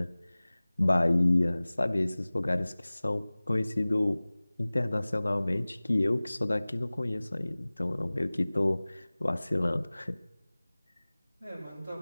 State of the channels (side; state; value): both; inverted; correlation -0.99